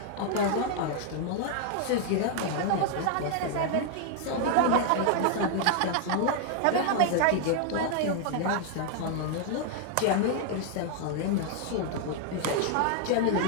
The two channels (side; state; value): both; different; correlation 0.00